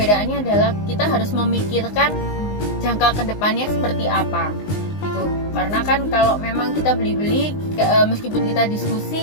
adalah kita harus memikirkan jangka kedepannya seperti apa. Karena kan kalau memang kita beli-beli, meskipun kita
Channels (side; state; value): right; late; 19 ms